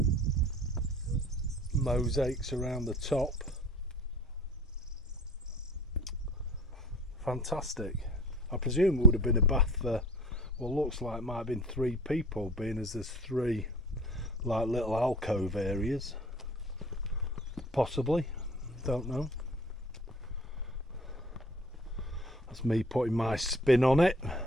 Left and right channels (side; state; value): both; normal; correlation 0.46